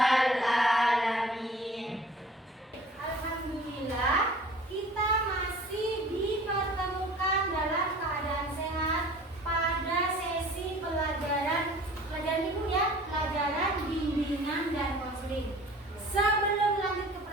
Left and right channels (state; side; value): normal; both; correlation 0.47